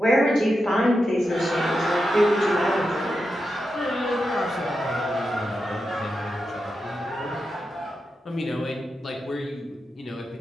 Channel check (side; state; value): both; normal; correlation 0.88